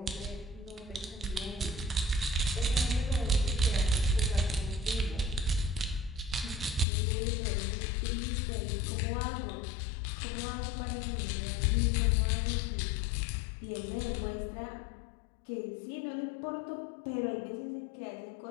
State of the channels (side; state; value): right; drops out; at 6.9 s